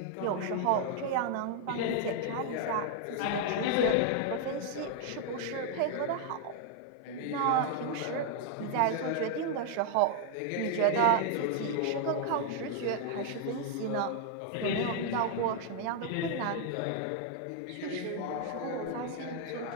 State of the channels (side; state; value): both; different; correlation 0.00